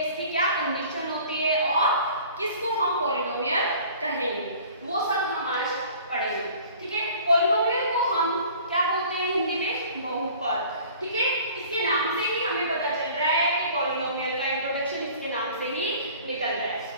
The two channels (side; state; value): both; inverted; correlation -0.48